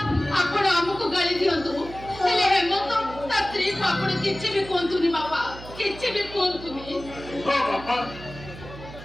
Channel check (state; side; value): noise; right; hum, 14 dB below the sound